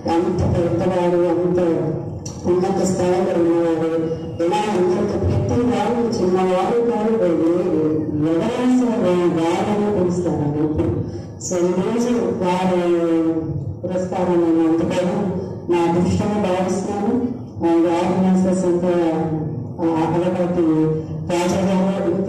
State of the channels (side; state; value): both; identical; correlation 1.00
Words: అంత పెద్దవాడు, అంత ఉన్నత స్థాయిలో ఉన్నవాడు. ఎలా అందరితో ప్రతి వాడు చిన్నవాడు కాదు, ఎవరైనా సరే వాడని పిలుస్తారండి ఇప్పుడు. సో ఈరోజు వారి పురస్కారం నేను అందుకోవడం నా అదృష్టంగా భావిస్తున్నాను. ఆర్గనైజర్స్ అంతా అలవాటి రాజా గారు